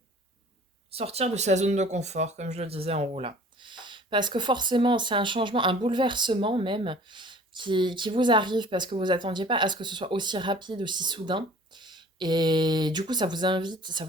Sortir de sa zone de confort, comme je le disais en haut là. Parce que forcément, c'est un changement, un bouleversement même, qui vous arrive parce que vous attendiez pas à ce que ce soit aussi rapide, aussi soudain. Et du coup, ça vous invite, ça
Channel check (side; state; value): both; normal; correlation 0.48